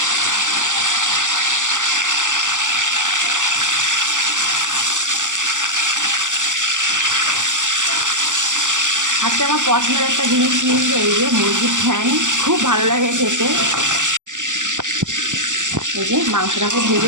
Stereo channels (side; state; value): left; late; 0.86 ms